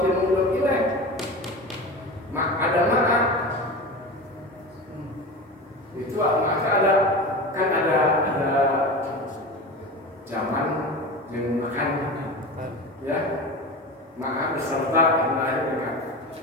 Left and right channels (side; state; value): both; normal; correlation 0.29